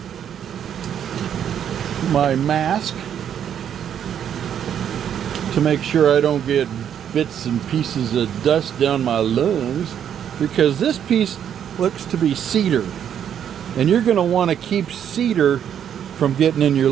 mask to make sure I don't get bits and pieces of dust down my lungs, because this piece looks to be cedar, and you're going to want to keep cedar from getting in your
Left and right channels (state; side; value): quieter; left; 9.2 dB